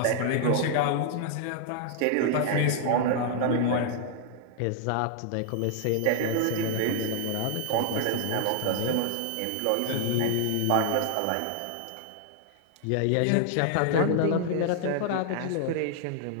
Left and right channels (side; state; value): both; different; correlation 0.00